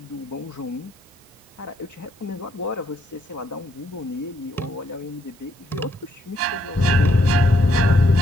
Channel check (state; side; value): normal; both; correlation 0.74